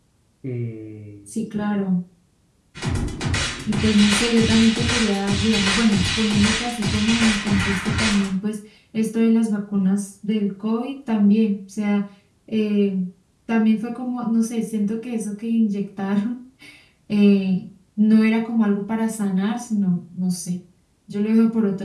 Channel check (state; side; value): identical; both; correlation 1.00